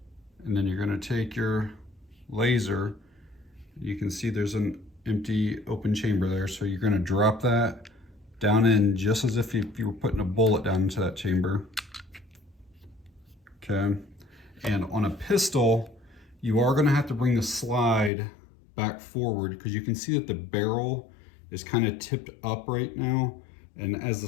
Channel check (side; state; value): right; drops out; at 18.1 s